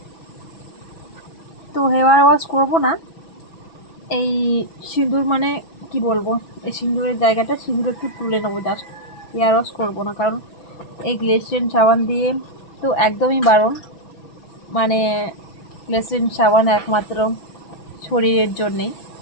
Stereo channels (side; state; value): right; late; 6.1 ms